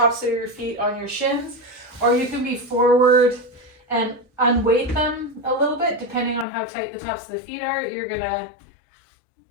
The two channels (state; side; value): drops out; right; at 6.5 s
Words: of your feet on your shins, or you can be forward and unweight them a little bit depending on how tight the tops of the feet are. You're gonna